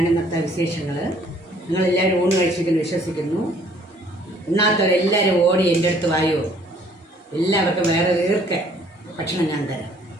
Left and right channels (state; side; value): normal; both; correlation 0.59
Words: ഇന്നത്തെ വിശേഷങ്ങൾ. നിങ്ങളെല്ലാവരും ഊണ് കഴിച്ചിരിക്കുന്നു വിശ്വസിക്കുന്നു. ഇന്നാത്തവരെല്ലാവരും ഓടി എൻ്റെ അടുത്ത് വായോ, എല്ലാവർക്കും വേറെ തീർക്കെ ഭക്ഷണം ഞാൻ തരാം.